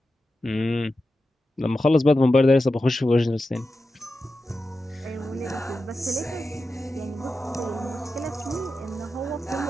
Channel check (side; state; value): both; normal; correlation 0.91